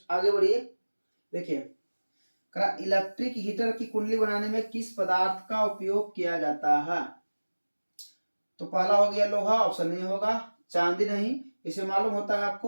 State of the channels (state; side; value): inverted; both; correlation -1.00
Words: आगे बढ़िए, देखिए इलेक्ट्रिक हीटर की कुंडली बनाने में किस पदार्थ का उपयोग किया जाता है? तो पहला हो गया लोहा, ऑप्शन नहीं होगा, चांदी नहीं, इसे मालूम होता है